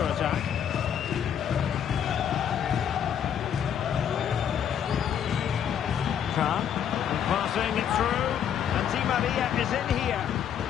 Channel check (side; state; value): right; quieter; 8.9 dB